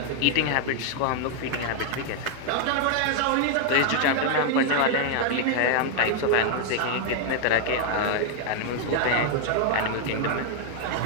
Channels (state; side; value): different; both; correlation 0.00